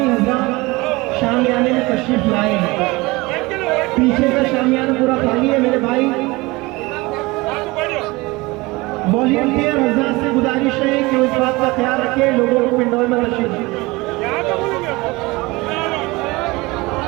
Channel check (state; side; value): quieter; left; 22.8 dB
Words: حضرات شامیانے میں تشریف لائے ہیں، پیچھے کا شامیانہ پورا خالی ہے میرے بھائی۔ والنٹیئر حضرات سے گزارش ہے کہ اس بات کا خیال رکھیں لوگوں کو پنڈول میں تشریف لائیں۔